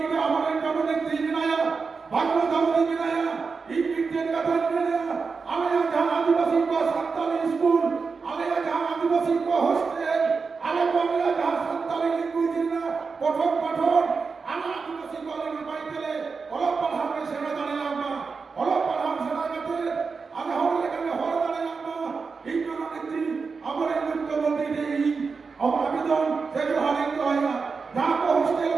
আমাদের জননেত্রী বিনায়া বাংলা দামদি বিনায়া এই বিজ্ঞান কথা বিনায়া আলেয়া जहां आदिवासी को संताली स्कूल आलेया जहां आदिवासी को हॉस्टेल आले बांग्ला जहां संताली लैंग्वेज ना पठन आना आदिवासी को आले पाइतेले অলপ পাঠামে সেনা দাঁড়ালাম না অলপ পাঠাম সেনা কাতে আলে হলে কানে হল দাঁড়ালাম না এই জননেত্রী আমার এই মুখ্যমন্ত্রী এই আবেদন সে হারিয়ে হয় না যা কো হস্টেল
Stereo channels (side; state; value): left; quieter; 4.9 dB